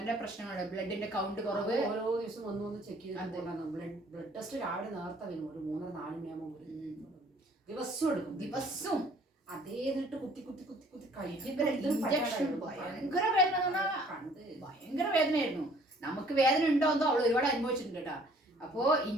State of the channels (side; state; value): both; normal; correlation 0.57